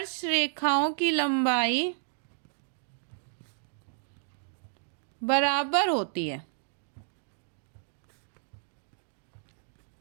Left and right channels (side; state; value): left; silent; digital silence